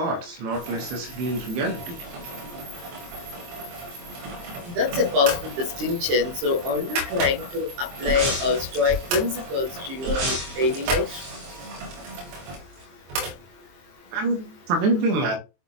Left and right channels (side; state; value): left; late; 23 ms